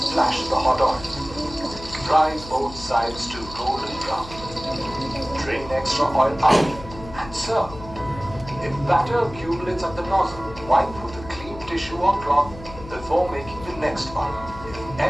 the hot oil. Fry both sides to golden brown. Drain extra oil out and serve. If batter accumulates at the nozzle, wipe with a clean tissue or cloth before making the next one. If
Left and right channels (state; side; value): noise; left; hum, 15 dB below the sound